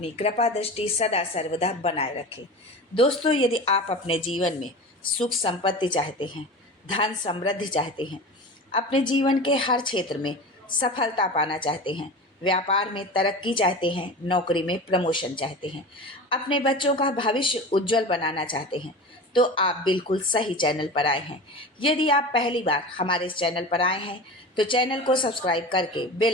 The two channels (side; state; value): both; normal; correlation 0.31